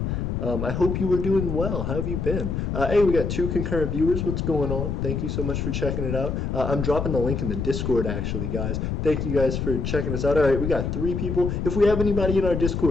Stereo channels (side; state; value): left; noise; rumble, 2 dB below the sound